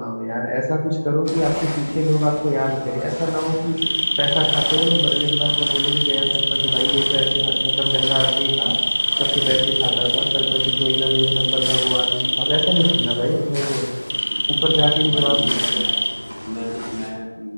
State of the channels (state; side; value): inverted; both; correlation -1.00